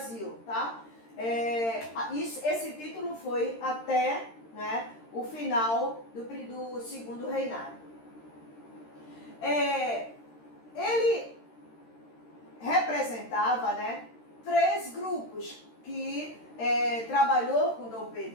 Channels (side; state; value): right; late; 13 ms